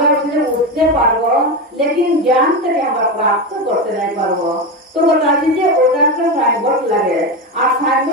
উঠে উঠতে পারবো लेकिन ज्ञान থেকে আমরা প্রাপ্ত করতে নাই পারবো তো बताছি যে ওটা একটা সাইনবোর্ড লাগে আর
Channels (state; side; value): normal; both; correlation 0.16